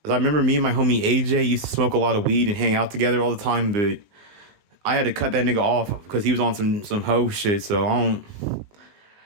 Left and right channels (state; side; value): late; left; 19 ms